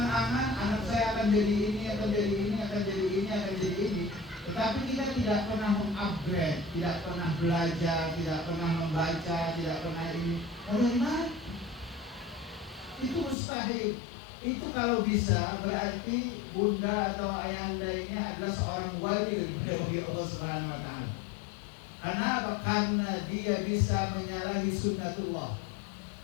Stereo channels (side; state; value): right; drops out; at 13.4 s